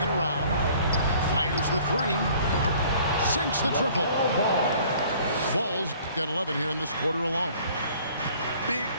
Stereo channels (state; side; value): inverted; both; correlation -0.54